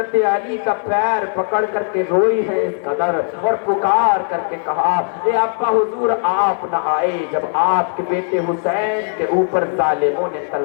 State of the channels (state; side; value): silent; right; digital silence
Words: अली का पैर पकड़ करके रोई है इस कदर और पुकार करके कहा ए अब्बा हुजूर आप न आए जब आपके बेटे हुसैन के ऊपर ज़ालिमों ने